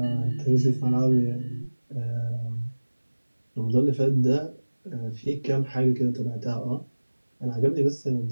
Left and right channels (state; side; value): inverted; both; correlation -1.00